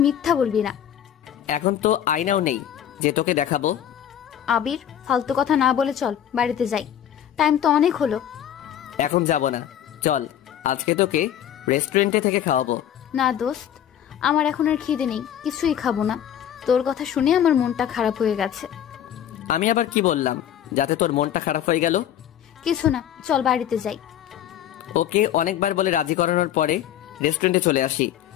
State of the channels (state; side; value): quieter; right; 10.4 dB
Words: মিথ্যা বলবি না। এখন তো আয়নাও নেই যে তোকে দেখাবো। আবির, ফালতু কথা না বলে চল বাড়িতে যাই, টাইম তো অনেক হলো। এখন যাব না, চল আজকে তোকে রেস্টুরেন্টে থেকে খাওয়াবো। না দোস্ত, আমার এখন আর খিদে নেই, কিছুই খাবো না। তোর কথা শুনে আমার মনটা খারাপ হয়ে গেছে। আমি আবার কি বললাম যাতে তোর মনটা খারাপ হয়ে গেল? কিছু না, চল বাড়িতে যাই। ওকে অনেকবার বলে রাজি করানোর পরে রেস্টুরেন্টে চলে আসি।